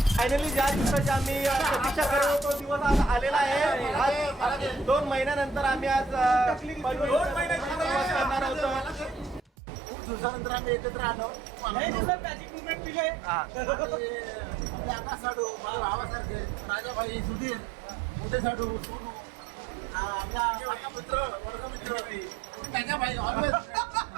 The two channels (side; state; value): left; drops out; at 9.4 s